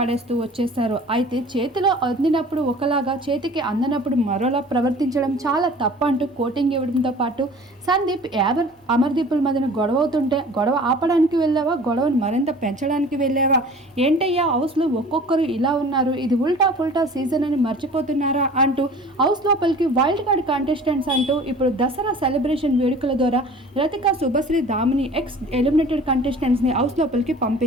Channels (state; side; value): normal; both; correlation 0.44